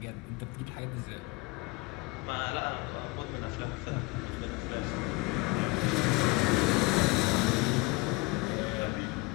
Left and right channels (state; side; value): quieter; right; 24.6 dB